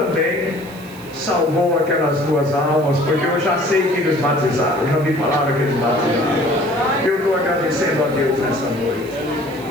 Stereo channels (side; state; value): right; noise; hiss, 22 dB below the sound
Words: salvou aquelas duas almas, porque eu já sei que eles batizaram, eu já me falaram que eles batizaram. Eu estou agradecendo a Deus nessa noite.